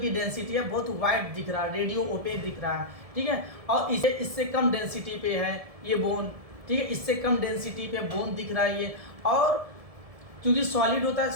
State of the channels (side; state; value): left; late; 1.7 ms